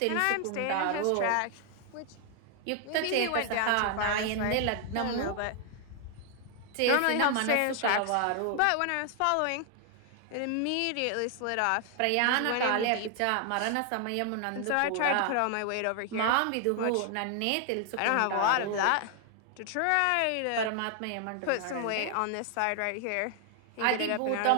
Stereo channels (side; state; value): both; different; correlation 0.00